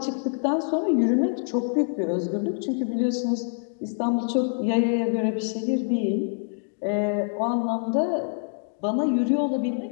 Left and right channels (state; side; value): silent; right; digital silence